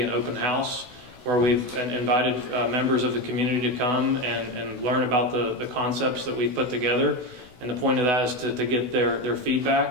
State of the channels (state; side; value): late; left; 16 ms